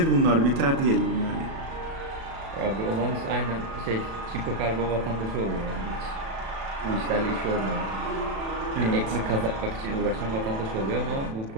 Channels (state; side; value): late; left; 36 ms